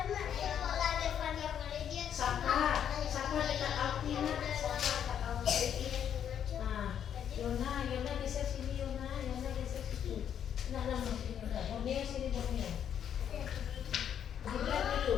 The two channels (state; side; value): quieter; right; 9.0 dB